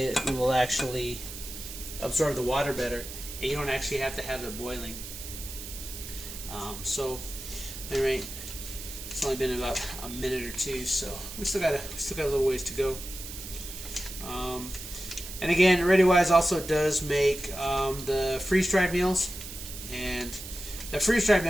will actually absorb the water better, and you don't actually have to have it boiling. So, anyway, it's only been about a minute or two, so we still got a little ways to go. And again, ReadyWise also does make the freeze-dried meals, and the freeze-dried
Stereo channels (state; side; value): noise; right; hiss, 10 dB below the sound